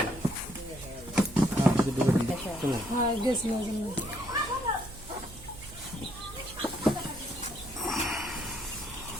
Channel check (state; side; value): noise; right; hum, 17 dB below the sound